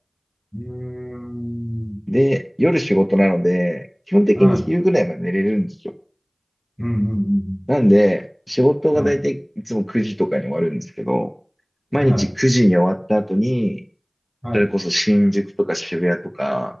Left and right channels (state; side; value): identical; both; correlation 1.00